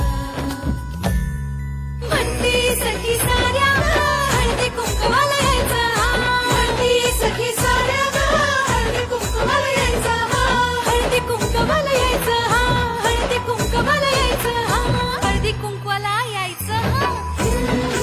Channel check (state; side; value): identical; both; correlation 1.00